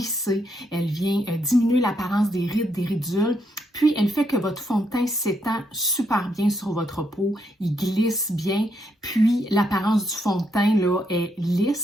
elle vient diminuer l'apparence des rides, des ridules, puis elle fait que votre fond de teint s'étend super bien sur votre peau, il glisse bien, puis l'apparence du fond de teint est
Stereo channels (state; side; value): normal; both; correlation 0.77